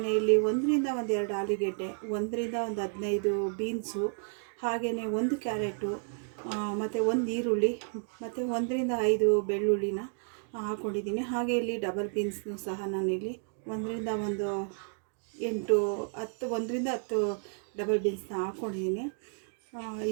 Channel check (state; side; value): silent; left; 57 dB below the other